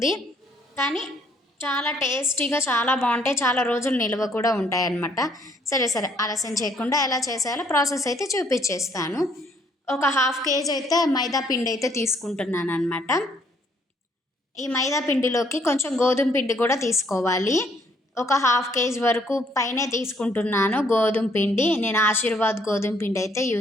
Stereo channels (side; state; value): both; normal; correlation 0.66